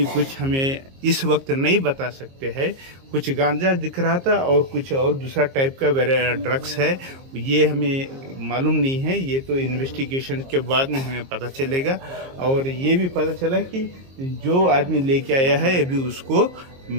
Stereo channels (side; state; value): left; late; 22 ms